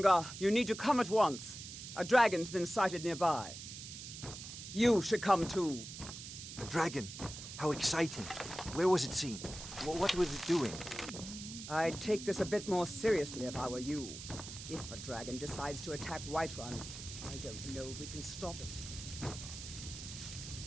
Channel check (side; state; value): right; noise; hiss, 10 dB below the sound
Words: you need to come at once. A dragon's been sighted nearby. You should come too. A dragon? How exciting. Where was it seen? What was it doing? I'd take this a bit more seriously if I were you. If a dragon decides to attack Whiterun, I don't know if we can stop it.